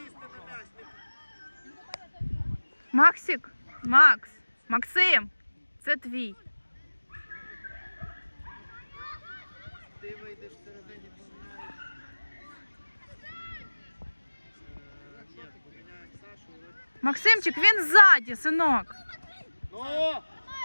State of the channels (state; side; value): inverted; both; correlation -1.00